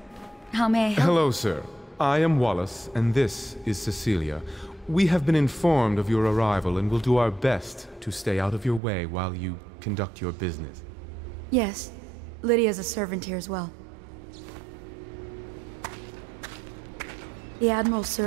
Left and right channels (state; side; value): drops out; left; at 8.8 s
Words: How may I help? Hello, sir. I am Wallace, and this is Cecilia. We have been informed of your arrival and will do our best to stay out of your way while you conduct your business. Yes. Lydia's a servant here as well. The Admiral